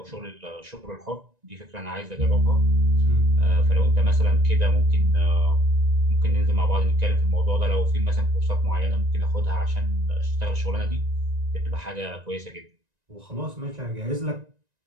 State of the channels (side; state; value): left; late; 1.9 ms